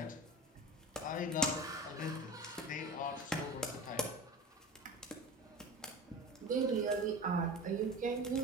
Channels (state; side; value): normal; both; correlation 0.31